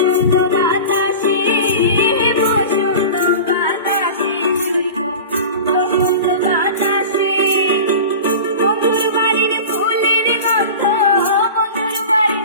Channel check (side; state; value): both; inverted; correlation -0.33